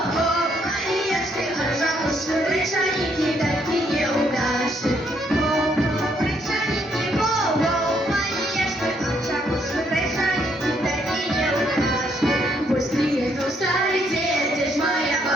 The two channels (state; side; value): normal; both; correlation 0.71